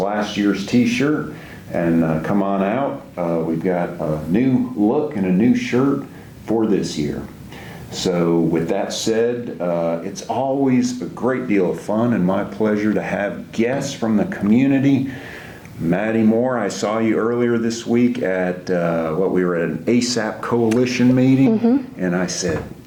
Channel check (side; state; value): both; identical; correlation 1.00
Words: year's t-shirt, and come on out. We've got a new look and a new shirt for this year. So with that said, it's always a great deal of fun and my pleasure to have guests from the community. Madi Moore, I saw you earlier this week at we were at an ASAP Coalition meeting, and I said,